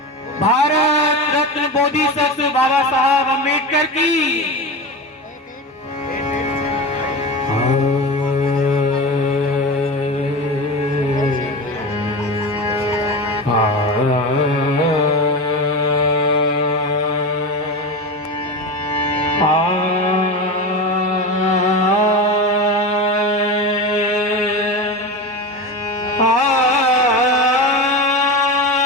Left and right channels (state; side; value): normal; both; correlation 0.24